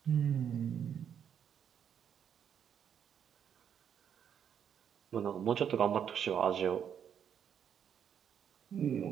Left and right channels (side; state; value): left; quieter; 8.4 dB